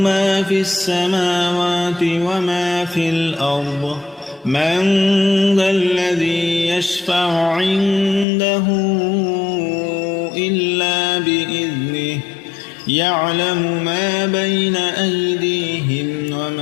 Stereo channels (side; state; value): right; drops out; at 8.2 s